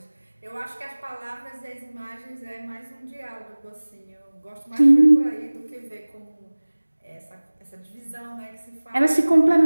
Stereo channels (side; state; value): both; inverted; correlation -1.00